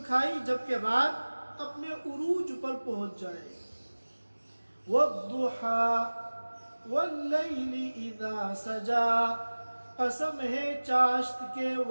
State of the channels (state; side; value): inverted; both; correlation -1.00